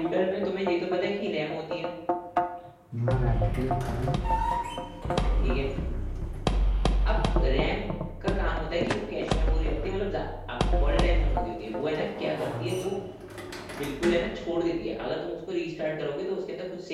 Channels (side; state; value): both; identical; correlation 1.00